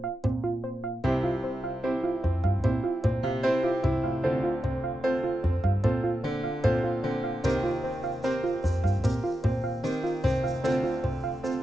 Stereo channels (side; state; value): both; normal; correlation 0.89